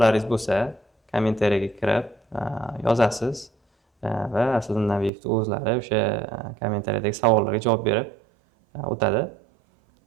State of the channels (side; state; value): left; drops out; at 5.1 s